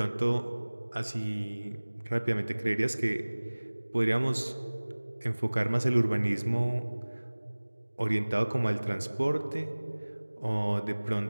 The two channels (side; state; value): both; inverted; correlation -1.00